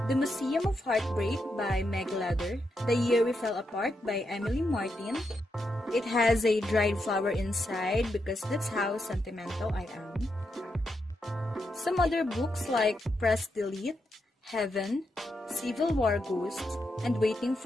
The Museum of Heartbreak by Meg Leather, The Year We Fell Apart by Emily Martin. It has a dried flower inside because that's how sentimental I am. Some other books like Press Delete, Heaven, Civil War Ghost, and Waiting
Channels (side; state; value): both; normal; correlation 0.83